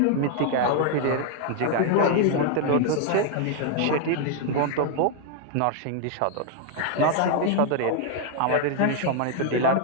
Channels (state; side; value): different; both; correlation 0.00